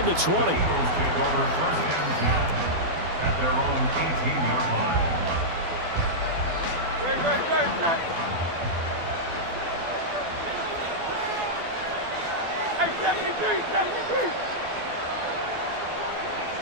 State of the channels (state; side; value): late; left; 12 ms